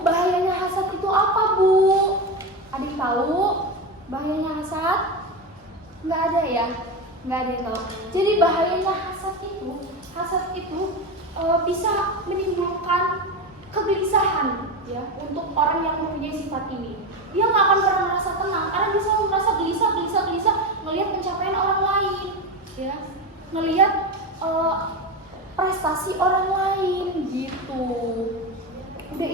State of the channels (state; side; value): normal; both; correlation 0.18